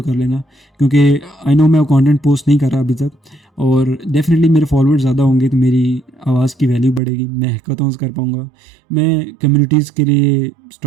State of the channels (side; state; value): left; drops out; at 7.0 s